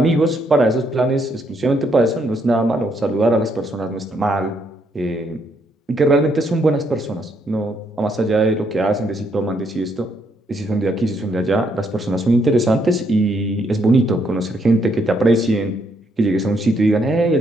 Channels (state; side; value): normal; both; correlation 0.73